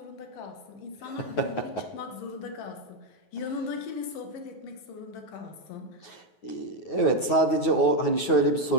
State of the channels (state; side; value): late; right; 9.4 ms